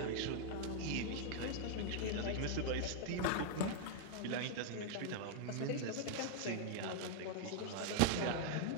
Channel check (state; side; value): different; both; correlation 0.00